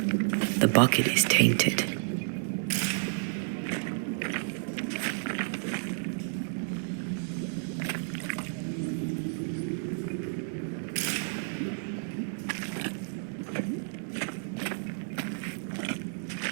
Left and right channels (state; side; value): silent; left; digital silence